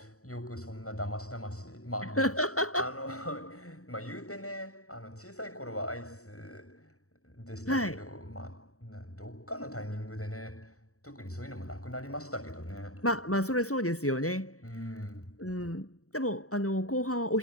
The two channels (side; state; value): right; late; 0.65 ms